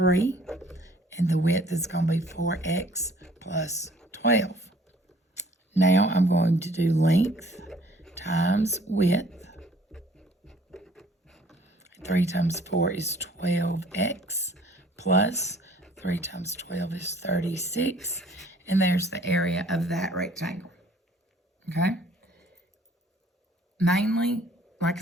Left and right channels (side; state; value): both; normal; correlation 0.56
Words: And the width is going to be 4x plus 12. Now I'm going to do length times width. 3 times 4 is 12x plus 3 times 12 is 36. And there's the area of that rectangle. Okay? Mainly, like